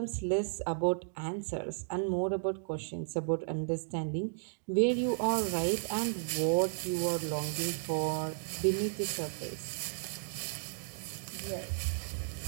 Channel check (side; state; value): left; silent; digital silence